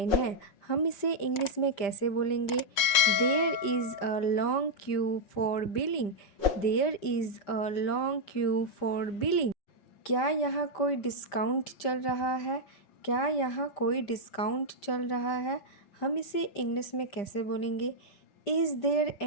है। हम इसे इंग्लिश में कैसे बोलेंगे? There is a long queue for billing. There is a long queue for billing. क्या यहाँ कोई डिस्काउंट चल रहा है? क्या यहाँ कोई डिस्काउंट चल रहा है? हम इसे इंग्लिश में कैसे बोलेंगे? Is there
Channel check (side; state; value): right; late; 5.1 ms